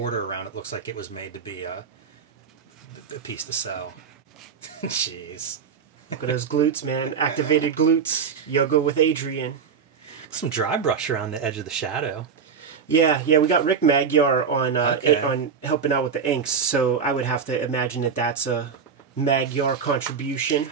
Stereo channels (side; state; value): left; quieter; 6.3 dB